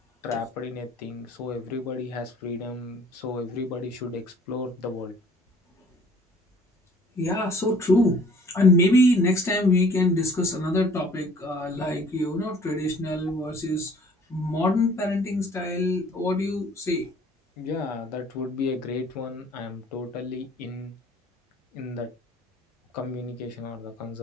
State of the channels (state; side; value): normal; both; correlation 0.54